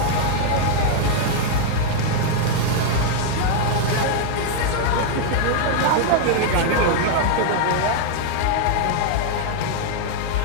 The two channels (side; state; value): both; different; correlation 0.00